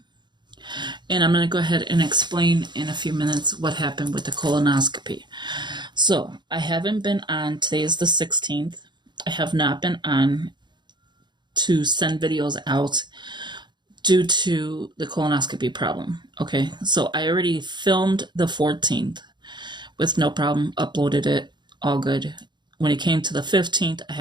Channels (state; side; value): late; left; 0.22 ms